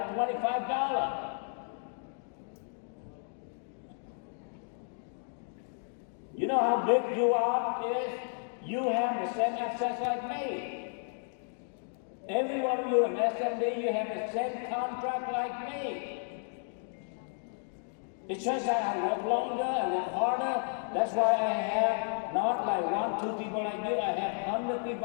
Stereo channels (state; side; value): silent; right; 56 dB below the other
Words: $125. You know how big you are is? You have the same access like me. Every one of you in SMD, you have the same contract like me. It's just that I work longer, I work harder. That's why I have not like 1, 2 people like you. I have 100